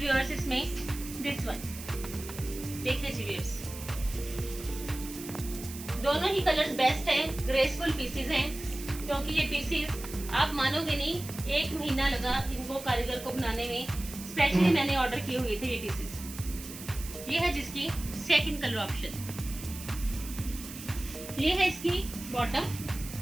इसमें दिस वन। देखिए जी व्यूअर्स, दोनों ही कलर्स बेस्ट हैं, ग्रेसफुल पीसेस हैं, क्योंकि ये पीसेस आप मानोगे नहीं, 1 महीना लगा इनको कारीगर को बनाने में। स्पेशली मैंने ऑर्डर किए हुए थे ये पीसेस। ये है जिसकी सेकंड कलर ऑप्शन। ये है इसकी बॉटम।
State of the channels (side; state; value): right; noise; hiss, 12 dB below the sound